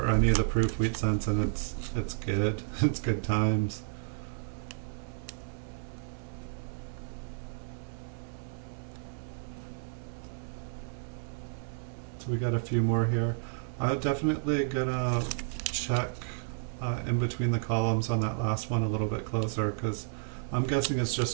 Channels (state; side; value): silent; left; 57 dB below the other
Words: any of the proof wheat cents, and it's good. It's good times. So we got a few more here. I'm definitely gonna check in between the columns on that last one a little bit closer, because I'm guessing it's